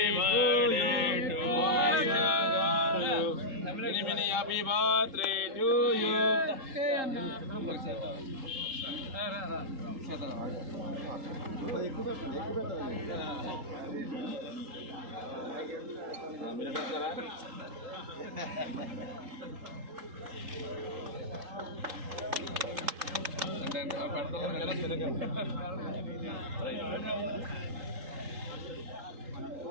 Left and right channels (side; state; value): left; late; 3.8 ms